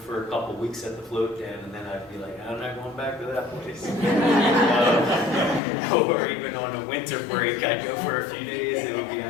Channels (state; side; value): drops out; right; at 5.6 s